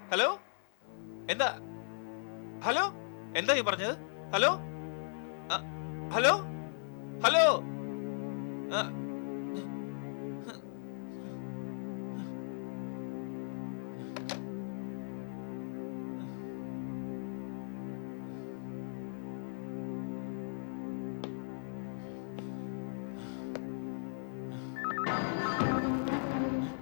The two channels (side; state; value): right; silent; digital silence